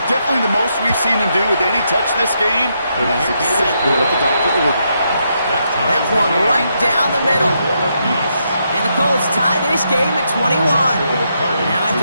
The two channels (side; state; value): both; inverted; correlation -0.79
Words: Definitely the most we've seen him do with any touch this game, and that's exactly what the doctor ordered. That's one right down the middle. And the Colts tie this game at 21. Now